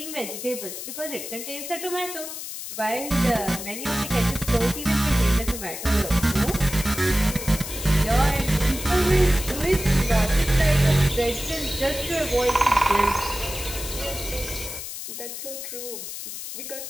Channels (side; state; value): left; noise; hiss, 8 dB below the sound